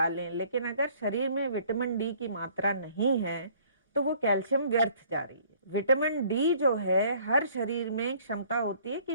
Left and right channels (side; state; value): both; inverted; correlation -0.58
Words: लें, लेकिन अगर शरीर में विटामिन डी की मात्रा नहीं है तो वो कैल्शियम व्यर्थ जा रही है। विटामिन डी जो है, हर शरीर में क्षमता होती है